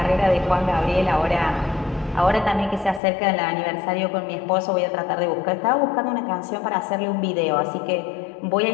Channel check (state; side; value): drops out; right; at 3.0 s